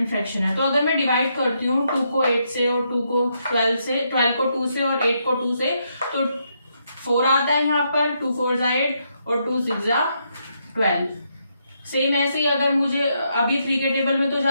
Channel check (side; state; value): both; inverted; correlation -0.78